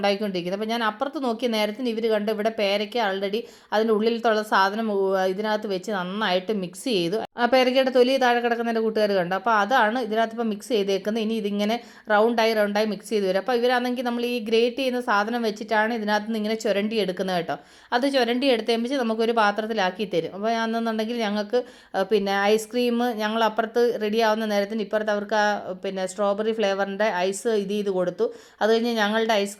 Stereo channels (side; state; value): both; identical; correlation 1.00